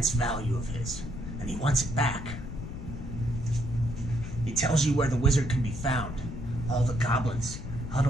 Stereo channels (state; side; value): noise; left; rumble, 9 dB below the sound